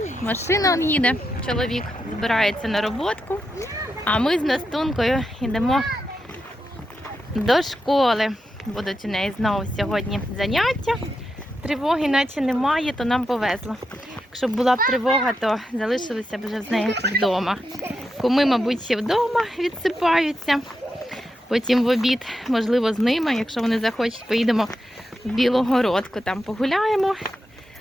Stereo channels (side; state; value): both; normal; correlation 0.86